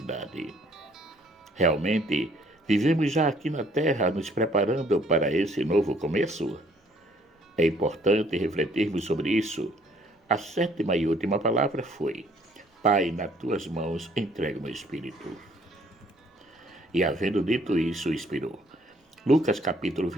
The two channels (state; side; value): normal; both; correlation 0.62